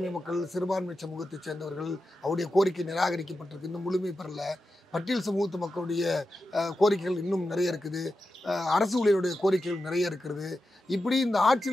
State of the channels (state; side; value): normal; both; correlation 0.91